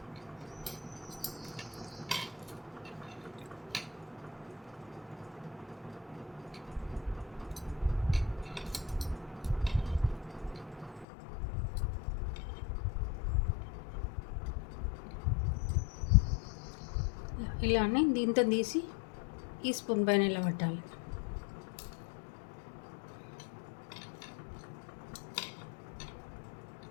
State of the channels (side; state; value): right; drops out; at 11.1 s